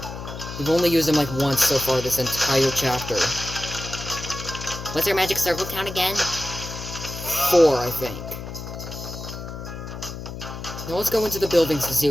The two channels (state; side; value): noise; left; hum, 9 dB below the sound